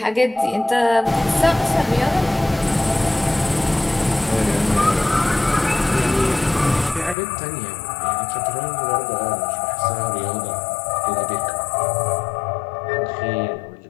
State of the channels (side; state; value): right; drops out; at 7.2 s